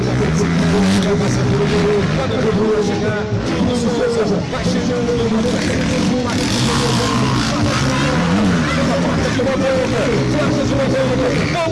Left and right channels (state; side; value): identical; both; correlation 1.00